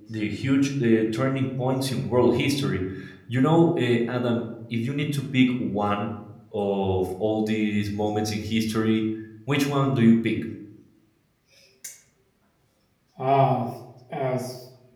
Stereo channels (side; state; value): both; identical; correlation 1.00